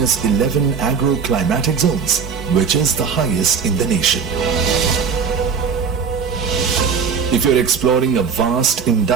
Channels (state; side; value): quieter; left; 6.2 dB